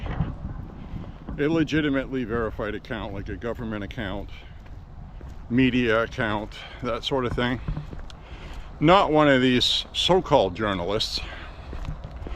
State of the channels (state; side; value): identical; both; correlation 1.00